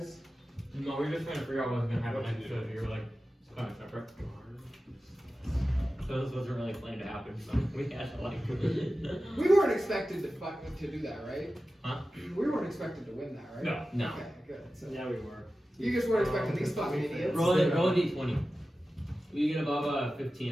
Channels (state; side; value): normal; both; correlation 0.94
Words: No, we were just trying to figure out what was gonna happen next, so you were like, it's kind of separate. So this wasn't really planned to happen, so we had to like. We weren't expected to do that, right? Huh? We weren't expected to win that, right? No. No. Okay, good. So Yeah, we were. you just weren't expecting these fucking idiots. Roll a d20. You get above